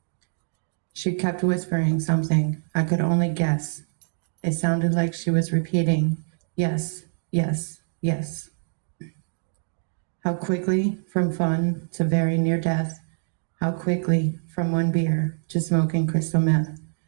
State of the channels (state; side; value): silent; left; digital silence